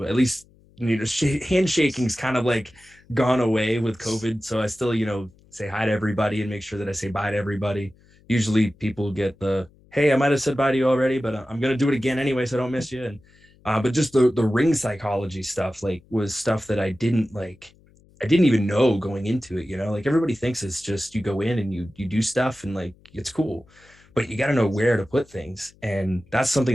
at least, handshaking's kind of like gone away with COVID. So I still, say hi to everybody and make sure that I say bye to everybody. Usually people get the, hey, I might've said bye to you already, but I'm going to do it again anyway, so I don't miss you. And, but just the ring psychology stuff, like was stuff that I didn't even know going into it, like everybody thinks it's just you go in and you do stuff and like it's cool, but you got to know where to put things. And that's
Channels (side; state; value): left; noise; hum, 29 dB below the sound